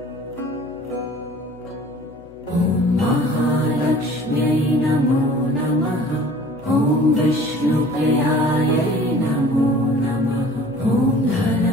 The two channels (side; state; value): left; noise; hum, 26 dB below the sound